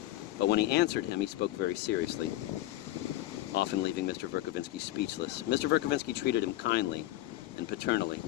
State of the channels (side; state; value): right; quieter; 15.6 dB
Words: but when he answered him, he spoke very seriously, often leaving Mr. Verkovensky speechless. Mr. Verkovensky treated him kindly and paternally,